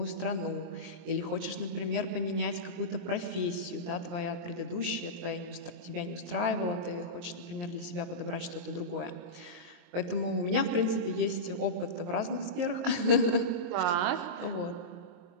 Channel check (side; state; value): left; late; 23 ms